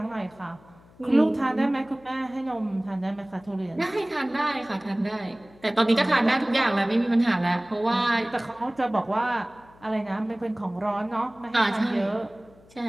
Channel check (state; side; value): noise; left; hum, 26 dB below the sound